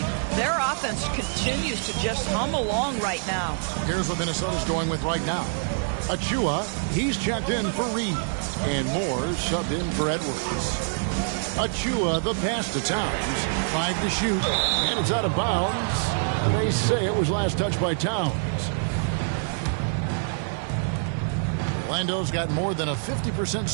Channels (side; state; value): left; silent; digital silence